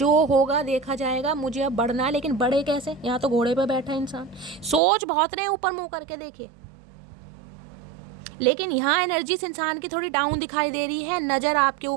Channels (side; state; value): left; drops out; at 4.8 s